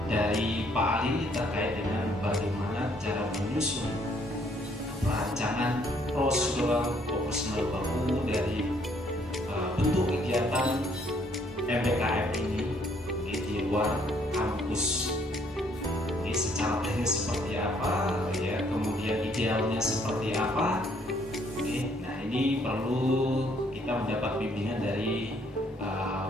dari Pak Ali terkait dengan bagaimana cara menyusun rancangan prosedural operasional baku dari bentuk kegiatan MBKM ini di luar kampus. Secara teknis seperti apa, ya, kemudian idealnya seperti apa. Nah, ini perlu kita mendapat bimbingan dari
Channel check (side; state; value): both; normal; correlation 0.66